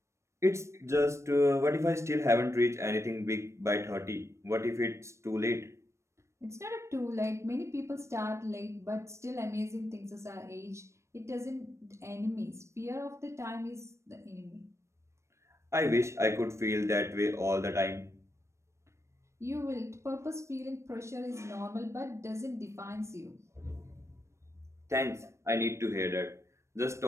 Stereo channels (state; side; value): late; left; 0.13 ms